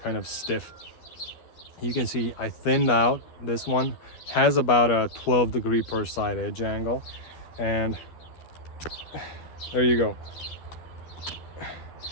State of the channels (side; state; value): right; late; 12 ms